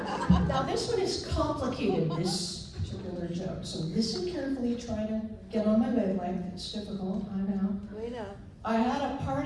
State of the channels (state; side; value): identical; both; correlation 1.00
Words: Now this one is complicated, this particular joke, so listen carefully, try to get on my wavelength. It's difficult, I know. We know. I had a